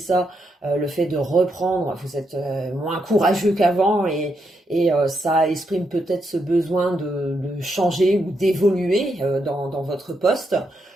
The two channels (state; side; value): normal; both; correlation 0.81